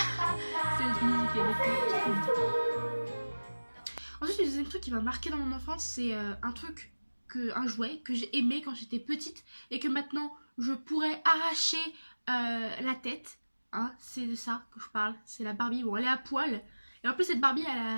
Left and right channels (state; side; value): inverted; both; correlation -1.00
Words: Cette musique, elle était trop bien. Ensuite, le deuxième truc qui m'a marqué dans mon enfance, c'est un jouet que j'ai aimé quand j'étais petite et que maintenant je pourrais arracher la tête. Hein, c'est de ça que je parle. C'est la Barbie. Bon, elle est à poil. Et en plus, cette Barbie, elle